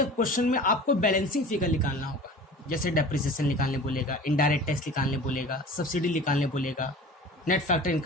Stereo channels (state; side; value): normal; both; correlation 0.39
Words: क्वेश्चन में आपको बैलेंसिंग फिगर निकालना होगा, जैसे डेप्रिसिएशन निकालने बोलेगा, इनडायरेक्ट टैक्स निकालने बोलेगा, सब्सिडी निकालने बोलेगा, net factor